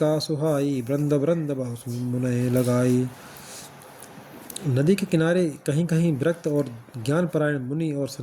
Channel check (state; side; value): identical; both; correlation 1.00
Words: सुहाई, वृंद वृंद बहु मुनय लगाई। नदी के किनारे कहीं कहीं विरक्त और ज्ञानपरायण मुनि और